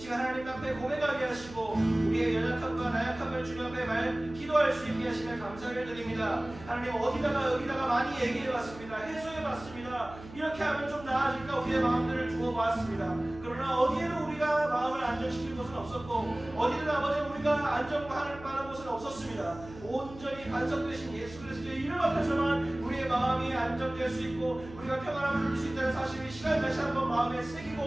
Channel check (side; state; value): right; noise; hum, 17 dB below the sound